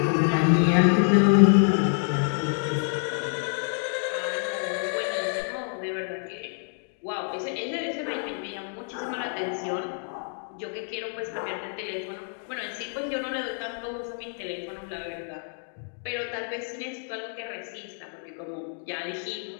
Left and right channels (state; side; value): silent; right; 60 dB below the other